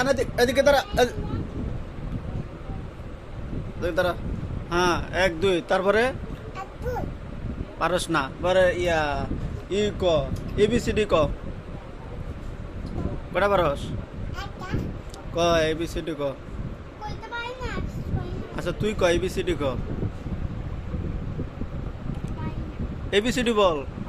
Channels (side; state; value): both; identical; correlation 1.00